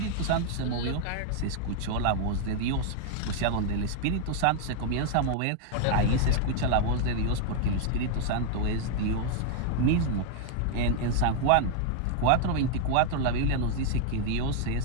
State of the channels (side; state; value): both; different; correlation 0.00